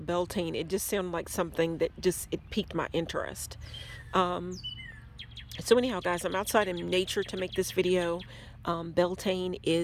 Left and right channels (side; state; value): both; identical; correlation 1.00